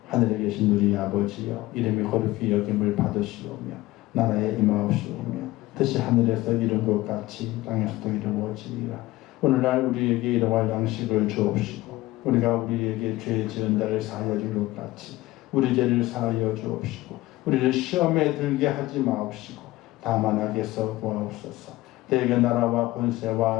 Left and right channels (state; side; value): quieter; right; 18.1 dB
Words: 하늘에 계신 우리 아버지여, 이름이 거룩히 여김을 받으시오며 나라에 임하옵시오며 뜻이 하늘에서 이룬 것 같이 땅에서도 이루어지리라. 오늘날 우리에게 일용할 양식을 주옵시고 우리가 우리에게 죄 지은 자를 사하여 줄 것 같이 우리 죄를 사하여 주옵시고 우리를 시험에 들게 하지 마옵시고 다만 악에서 구하옵소서. 대개 나라와